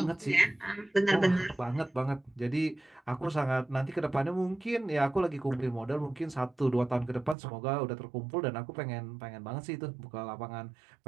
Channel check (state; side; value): drops out; left; at 7.4 s